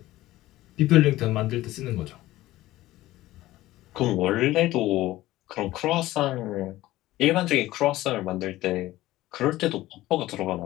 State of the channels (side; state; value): right; quieter; 16.5 dB